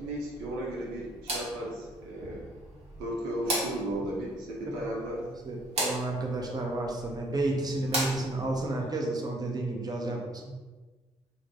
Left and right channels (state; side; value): normal; both; correlation 0.61